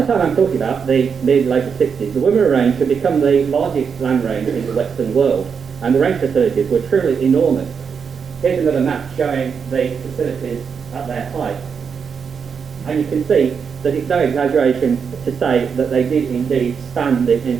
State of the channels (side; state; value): left; quieter; 6.4 dB